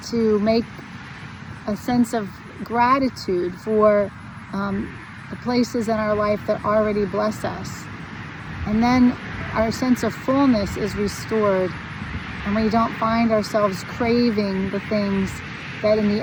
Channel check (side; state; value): both; identical; correlation 1.00